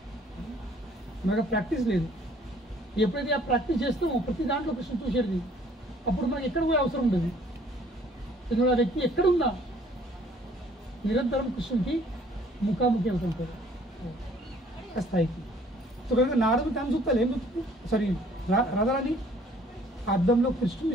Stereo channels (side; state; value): both; normal; correlation 0.58